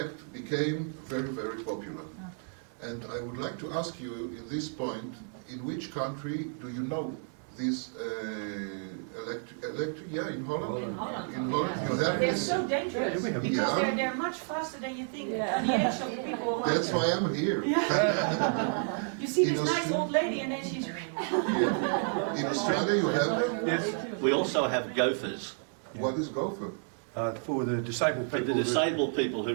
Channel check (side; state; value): left; silent; 56 dB below the other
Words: became very, very popular. And I would like to ask you in this point, in which country do you know this electric, yeah, in Holland? In Holland. In Holland, you have They're this? so dangerous because Yeah. they're much faster than you think. Yeah. The ancient people. That's why I'm here. You see In this nice Australia- old lady and then she's. In Australia you have, We also have gophers. what is gopher? For the disabled For people. the disabled people